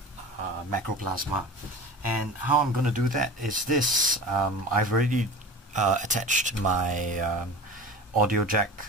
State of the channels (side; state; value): both; normal; correlation 0.34